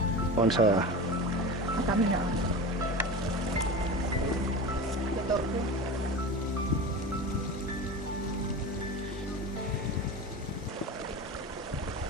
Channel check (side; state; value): both; normal; correlation 0.29